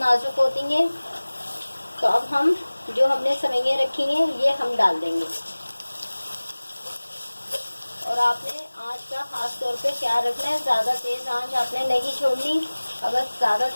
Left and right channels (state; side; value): inverted; both; correlation -1.00